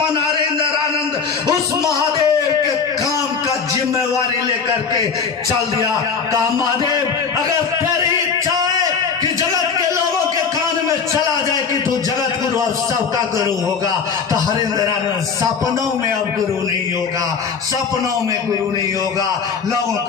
नरेंद्र आनंद उस महादेव के काम का जिम्मेवारी लेकर के चल दिया। कहा महादेव अगर तेरी इच्छा है कि जगत के लोगों के कान में चला जाए कि तू जगत गुरु और सबका गुरु होगा, तो हरेंद्र आनंद सपनों में अब गुरु नहीं होगा, सपनों में गुरु नहीं होगा, लोगों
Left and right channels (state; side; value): quieter; right; 5.9 dB